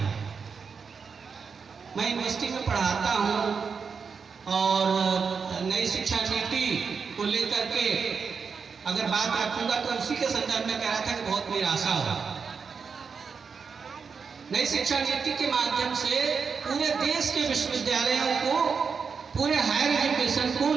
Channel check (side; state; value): left; quieter; 5.7 dB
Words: है। मैं यूनिवर्सिटी में पढ़ाता हूँ और नई शिक्षा नीति को लेकर के अगर बात रखूंगा तो उसी के संदर्भ में कह रहा था कि बहुत निराशा हो। नई शिक्षा नीति के माध्यम से पूरे देश के विश्वविद्यालयों को, पूरे हायर एजुकेशन को